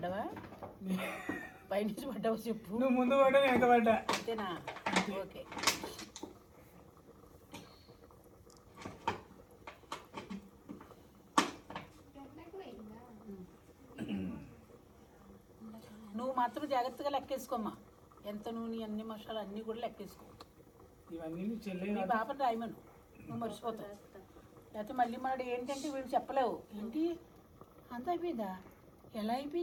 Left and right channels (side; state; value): both; identical; correlation 1.00